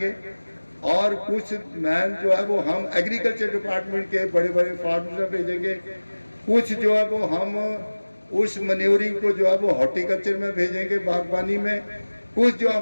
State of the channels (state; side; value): inverted; both; correlation -1.00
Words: और कुछ मैन जो है वो हम एग्रीकल्चर डिपार्टमेंट के बड़े बड़े फार्म्स में भेजेंगे, कुछ जो है वो हम उस मन्योरिंग को जो है वो हॉर्टिकल्चर में भेजेंगे, बागबानी में, कुछ जो